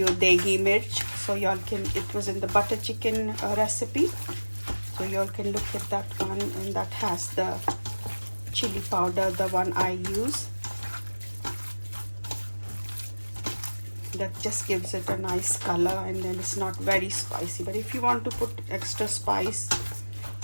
deggi mirch, so y'all can, it was in the butter chicken recipe, so y'all can look at that one, and that has the chili powder, the one I use. That just gives it a nice color, and then it's not very spicy. But if you want to put extra spice,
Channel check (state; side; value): inverted; both; correlation -1.00